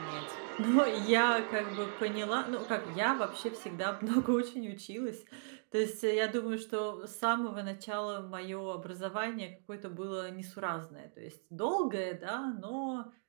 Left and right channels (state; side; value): silent; left; digital silence